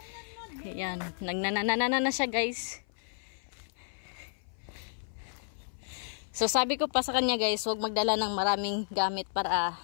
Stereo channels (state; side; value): silent; right; 57 dB below the other